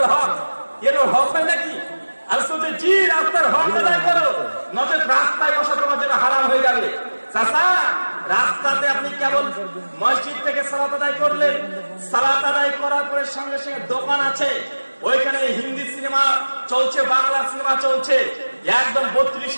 হক, এরও হক হয় নাকি? আর শুধু জি রাস্তার হক আদায় করো, নচেত রাস্তায় বসা তোমার জন্য হারাম হয়ে যাবে। চাচা রাস্তাতে আপনি কেবল মসজিদ থেকে সালাত আদায় করলেন, সালাত আদায় করার পরে সঙ্গে সঙ্গে দোকান আছে, ওইখানে হিন্দি সিনেমা চলছে, বাংলা সিনেমা চলছে, একদম 32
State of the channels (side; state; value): both; inverted; correlation -1.00